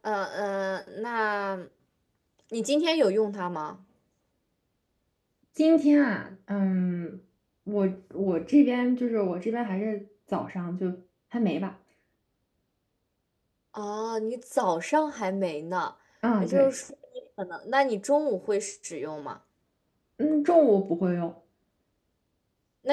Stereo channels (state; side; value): identical; both; correlation 1.00